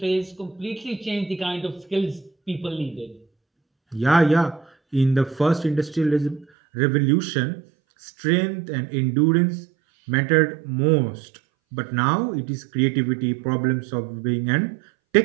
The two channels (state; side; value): drops out; left; at 6.5 s